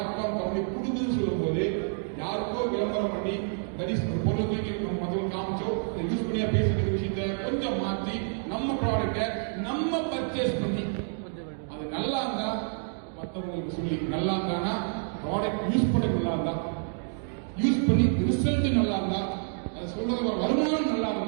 கம்பெனி கொடுக்குதுன்னு சொல்லும் போது யாருக்கோ விளம்பரம் பண்ணி தனிஷ் பொருளை தூக்கி நம்ம மற்றவங்க காமிச்சோ யூஸ் பண்ணியா பேசுற விஷயத்த கொஞ்சம் மாற்றி நம்ம ப்ராடக்டை நம்ம பர்ச்சேஸ் பண்ணி அது நல்லா இருந்தா மற்றவங்களுக்கு சொல்லி நல்லா இருந்தானா ப்ராடக்ட் யூஸ் பண்ண நல்லா இருந்தா யூஸ் பண்ணி ரிசல்ட் நல்லா இருந்தா அது சொல்றது வருமானம் நல்லா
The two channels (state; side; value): silent; left; 59 dB below the other